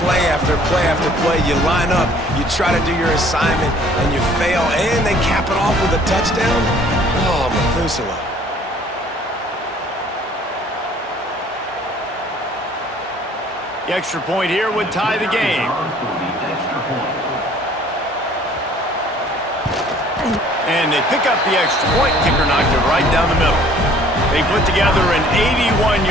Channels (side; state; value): both; normal; correlation 0.55